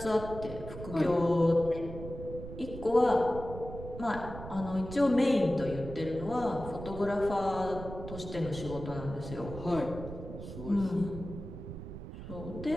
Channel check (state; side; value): noise; right; rumble, 10 dB below the sound